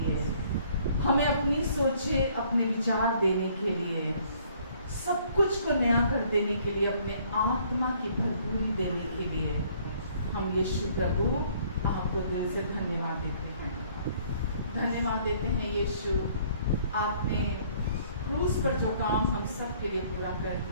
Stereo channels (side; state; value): both; inverted; correlation -0.60